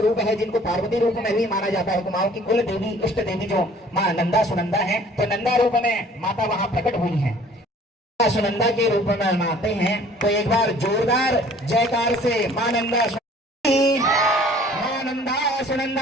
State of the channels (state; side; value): normal; both; correlation 0.53